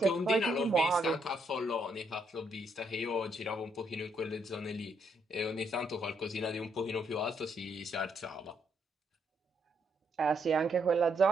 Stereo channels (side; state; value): both; normal; correlation 0.74